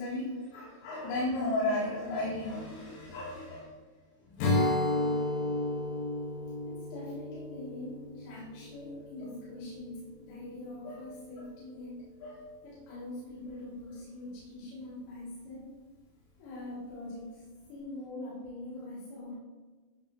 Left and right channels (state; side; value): late; right; 32 ms